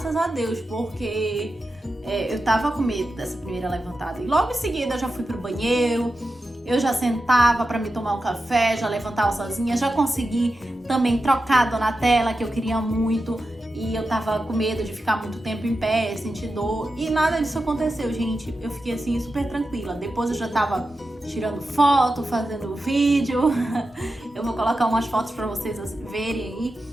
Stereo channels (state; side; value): normal; both; correlation 0.91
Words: a Deus, porque eu tava com medo dessa primeira levantada. E logo em seguida eu já fui pro banheiro, eu já sentava pra me tomar um café, já levantava sozinha, já consegui também trocar a Donatella, que eu queria muito. E eu tava com medo de ficar muito tempo em pé, sentir dor. E nada disso aconteceu, gente. Eu fiquei assim, super tranquila. Depois eu já tava tirando foto, fazendo vídeo. Eu vou colocar umas fotos pra vocês verem aí